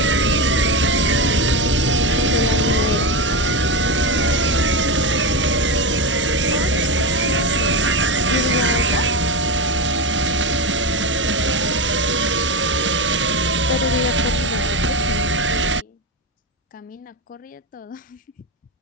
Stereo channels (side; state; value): both; normal; correlation 0.16